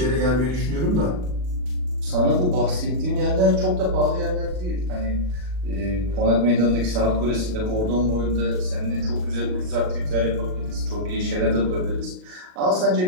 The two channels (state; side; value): late; left; 39 ms